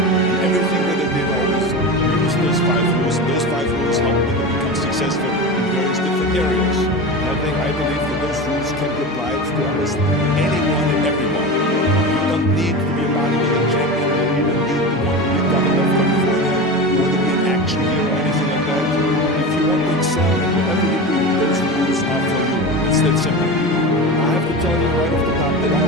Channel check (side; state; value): both; normal; correlation 0.26